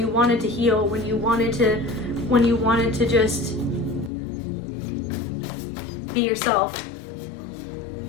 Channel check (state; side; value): drops out; right; at 4.1 s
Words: wanted to heal, when you wanted to just be yourself.